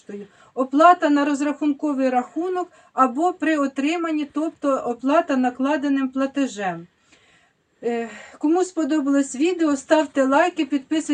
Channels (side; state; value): both; identical; correlation 1.00